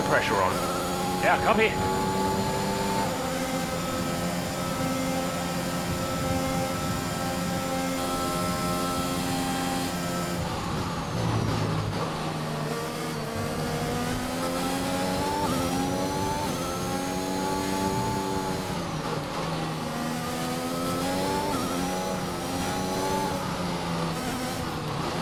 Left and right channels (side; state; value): both; identical; correlation 1.00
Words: pressure on. Yeah, copy.